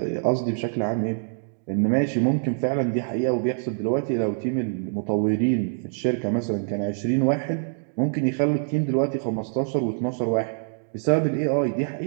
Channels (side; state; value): left; silent; digital silence